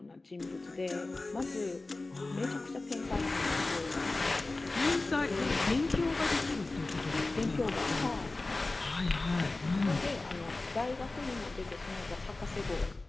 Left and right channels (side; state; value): right; quieter; 3.2 dB